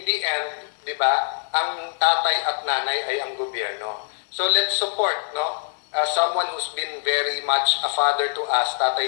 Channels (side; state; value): right; silent; digital silence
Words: the end, di ba, ang tatay at nanay ay ang gobyerno. So let's support, no, someone who's been very much a father to us,